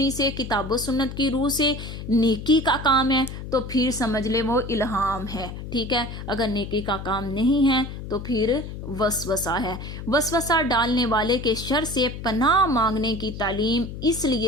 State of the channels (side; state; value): left; noise; hum, 9 dB below the sound